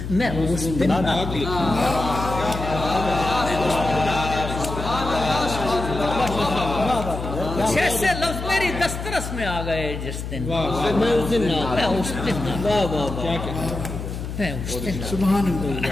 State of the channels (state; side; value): noise; left; hum, 7 dB below the sound